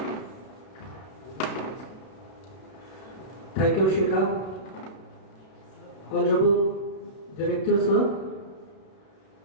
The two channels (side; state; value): right; late; 32 ms